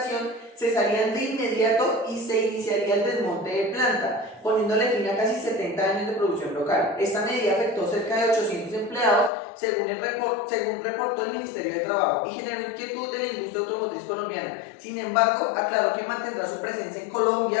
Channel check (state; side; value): drops out; right; at 9.3 s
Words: cesarían de inmediato y se iniciaría el desmonte de planta, poniéndole fin a casi 70 años de producción local. Esta medida afectó cerca de 800 empleados, según reportó el Ministerio de Trabajo, y generó inquietud de la industria automotriz colombiana. Sin embargo, aclaró que mantendrá su presencia en